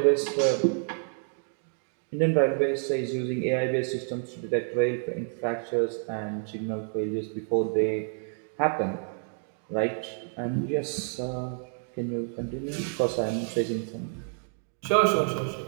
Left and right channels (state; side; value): silent; left; 59 dB below the other